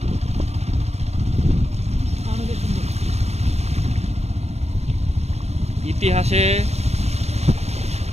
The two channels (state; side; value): late; left; 0.31 ms